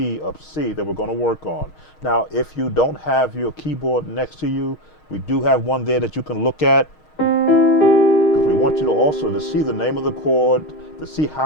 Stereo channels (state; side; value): late; right; 6.4 ms